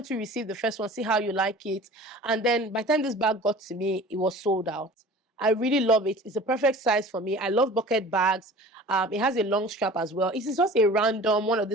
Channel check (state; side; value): normal; both; correlation 0.42